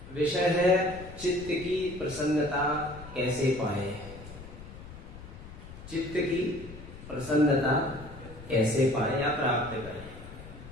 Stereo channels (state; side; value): noise; left; rumble, 15 dB below the sound